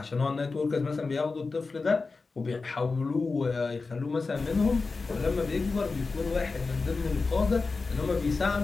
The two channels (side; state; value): right; quieter; 4.1 dB